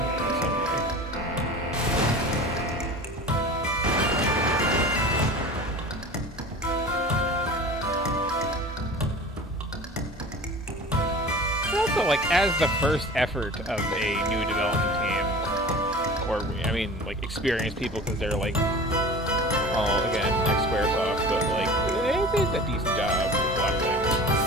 in some way. Also, like, as the first effort of a new development team, or, I mean, like, experienced people, because they're, like, all, again, ex-Squaresoft, but, like, they did a decent job with a lot of things.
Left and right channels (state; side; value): normal; both; correlation 0.38